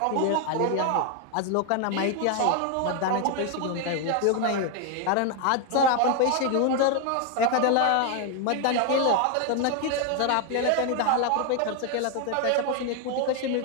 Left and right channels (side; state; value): both; different; correlation 0.01